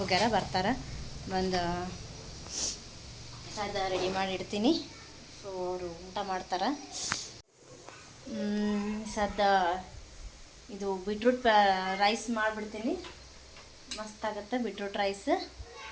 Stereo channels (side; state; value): both; identical; correlation 1.00